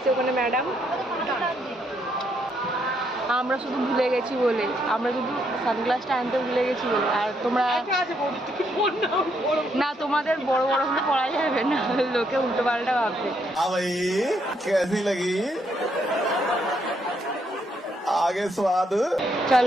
ওখানে ম্যাডাম। আমরা শুধু ভুলে গেছি বলে, আমরা শুধু সানগ্লাসটা আনতে ভুলে গেছি বলে। আর তোমরা না, তোমাদের বড় বড় হলে পড়া যাবে না, লোকে উল্টো পাল্টা ভাববে। आगे स्वाद।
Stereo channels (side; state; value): both; normal; correlation 0.74